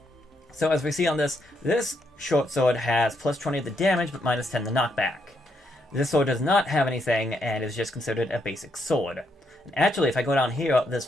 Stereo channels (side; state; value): both; normal; correlation 0.77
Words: So as we see on this short sword has plus 20 of the damage, but minus 10 the knockback. This sword does not have anything, and is just considered a basic sword. And actually, if I go down here,